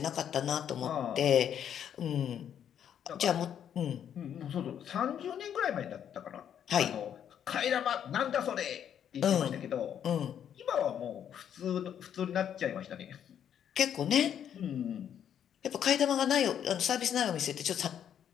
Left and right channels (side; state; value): right; quieter; 9.2 dB